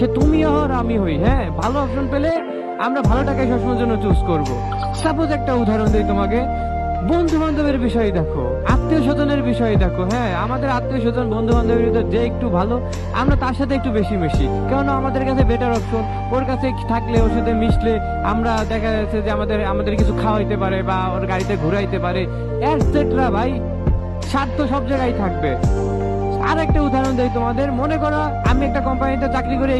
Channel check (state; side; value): identical; both; correlation 1.00